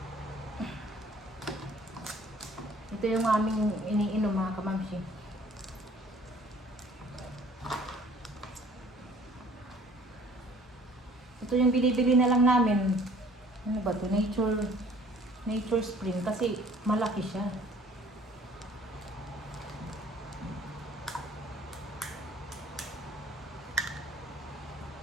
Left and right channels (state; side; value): normal; both; correlation 0.54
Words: Ito yung aming iniinom mga kamamsi. Ito yung binibili na lang namin. Ano ba to? Nature Spring kasi malaki siya.